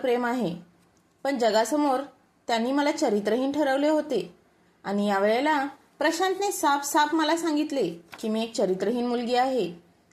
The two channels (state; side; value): identical; both; correlation 1.00